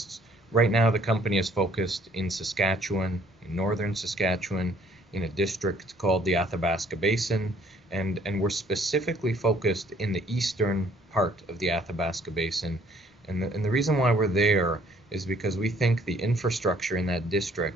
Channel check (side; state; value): both; normal; correlation 0.61